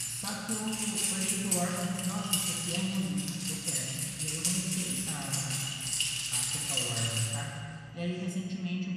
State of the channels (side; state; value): both; identical; correlation 1.00